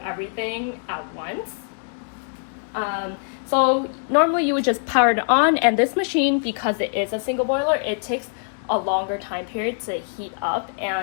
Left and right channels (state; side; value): silent; right; digital silence